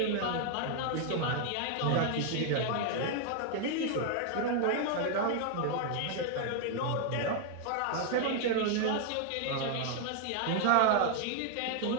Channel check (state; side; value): different; both; correlation 0.00